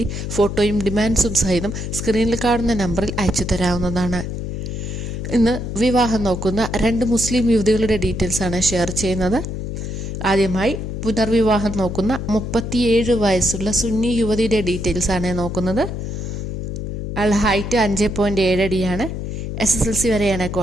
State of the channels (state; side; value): noise; left; hum, 5 dB below the sound